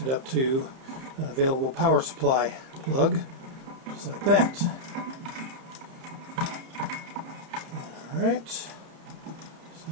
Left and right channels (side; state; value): left; late; 30 ms